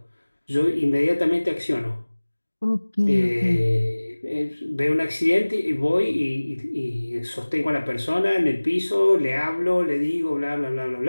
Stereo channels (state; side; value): inverted; both; correlation -1.00